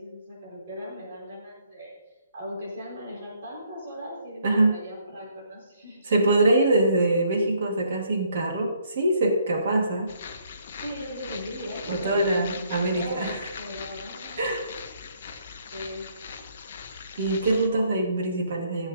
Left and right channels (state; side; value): inverted; both; correlation -0.68